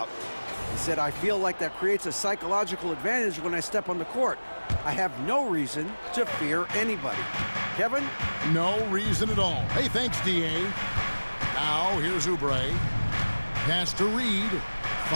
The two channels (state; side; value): inverted; both; correlation -1.00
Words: He said, I feel like that creates a psychological advantage when I step on the court. I have no reason to fear anybody. Kevin? No reason at all. Hey, thanks, D.A. Now, here's Oubre. Pass to Reed.